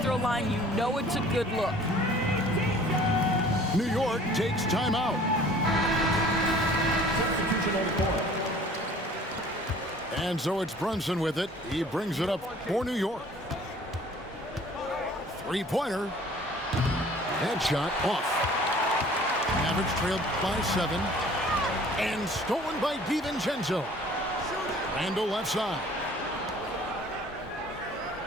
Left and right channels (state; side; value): normal; both; correlation 0.51